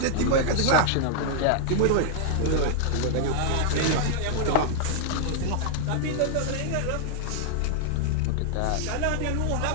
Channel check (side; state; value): both; different; correlation -0.01